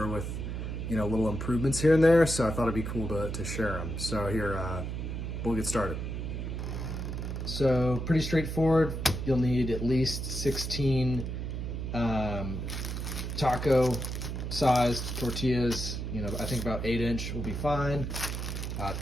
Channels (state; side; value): noise; right; hum, 4 dB below the sound